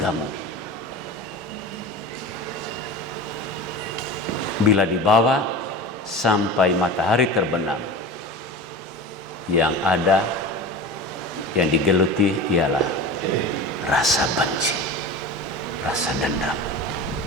bila dibawa sampai matahari terbenam, yang ada, yang digeluti ialah rasa benci, rasa dendam.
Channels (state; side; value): normal; both; correlation 0.32